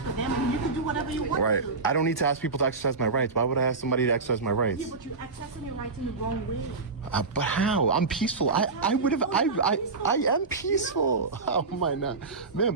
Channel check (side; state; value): left; quieter; 4.1 dB